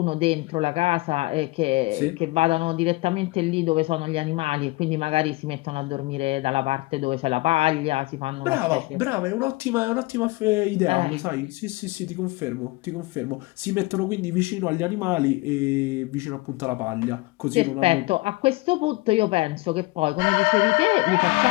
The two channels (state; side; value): quieter; right; 22.2 dB